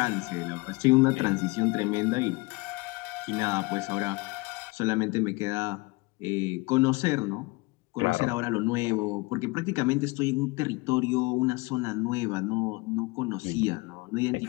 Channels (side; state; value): right; quieter; 24.8 dB